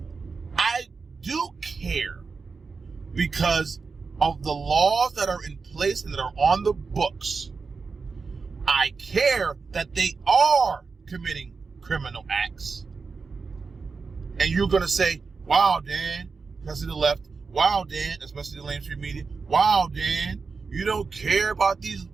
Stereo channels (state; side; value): quieter; left; 4.7 dB